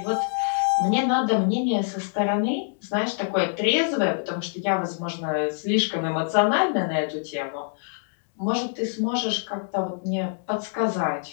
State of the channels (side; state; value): right; silent; digital silence